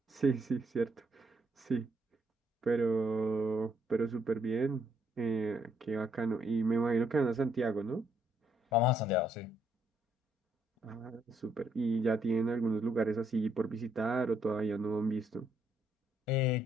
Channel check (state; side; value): normal; both; correlation 0.71